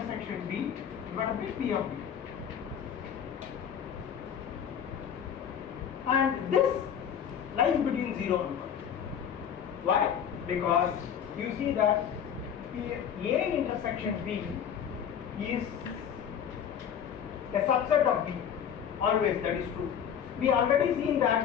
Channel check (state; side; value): quieter; right; 8.5 dB